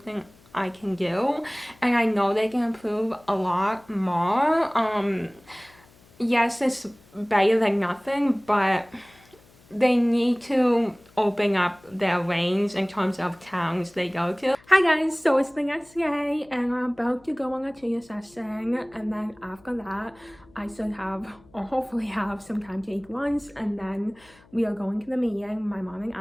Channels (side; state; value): left; noise; hum, 28 dB below the sound